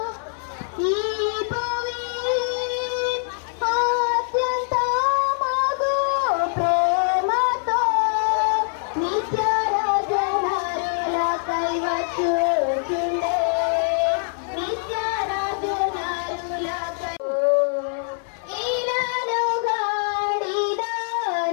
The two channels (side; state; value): right; silent; 63 dB below the other